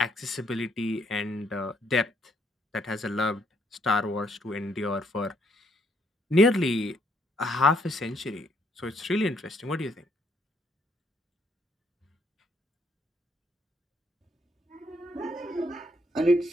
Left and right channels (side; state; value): both; normal; correlation 0.71